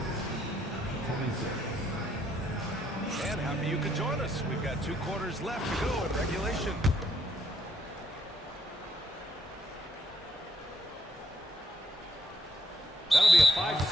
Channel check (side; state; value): both; normal; correlation 0.72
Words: And happy you could join us. We've got 2 quarters left to go in regulation. That'll be a